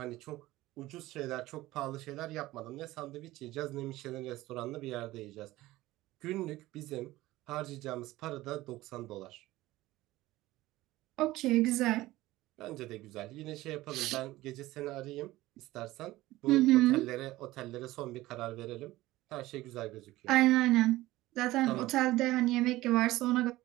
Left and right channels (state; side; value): quieter; left; 17.4 dB